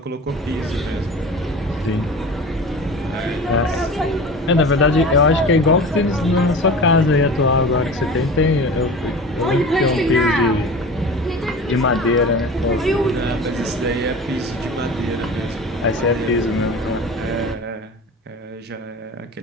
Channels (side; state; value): both; normal; correlation 0.35